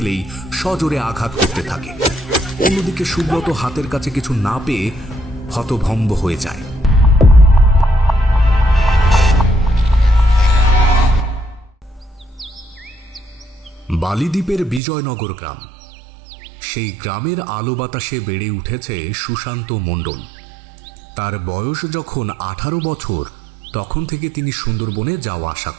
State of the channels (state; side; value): drops out; left; at 14.8 s